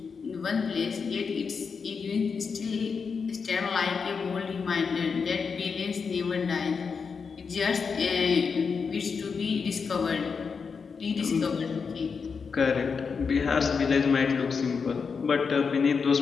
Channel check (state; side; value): quieter; right; 5.5 dB